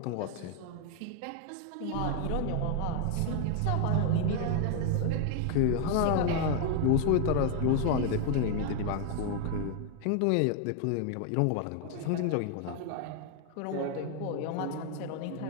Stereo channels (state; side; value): different; both; correlation 0.00